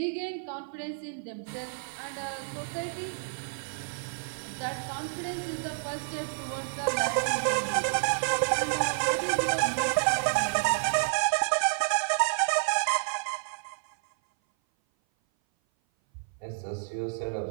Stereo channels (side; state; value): left; silent; 57 dB below the other